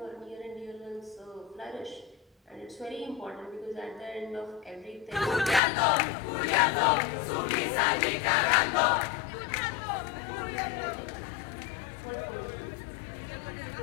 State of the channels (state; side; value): drops out; right; at 5.6 s